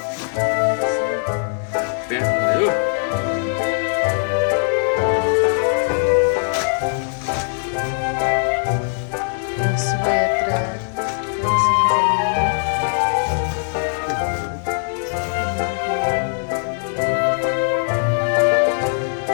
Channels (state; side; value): silent; right; 65 dB below the other